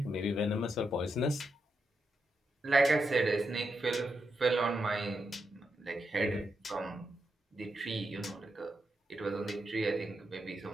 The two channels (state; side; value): normal; both; correlation 0.84